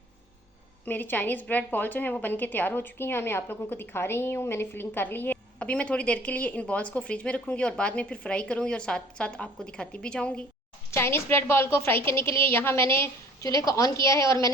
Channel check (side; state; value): both; normal; correlation 0.52